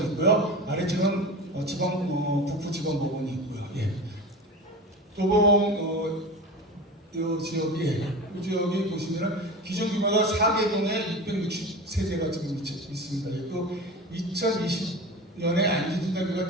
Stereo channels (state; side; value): normal; both; correlation 0.31